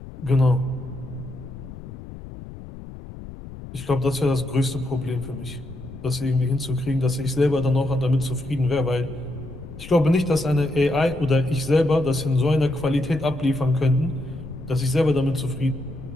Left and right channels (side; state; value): left; noise; rumble, 13 dB below the sound